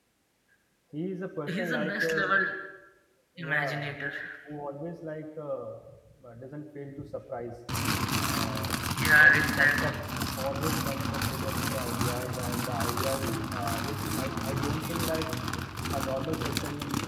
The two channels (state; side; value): identical; both; correlation 1.00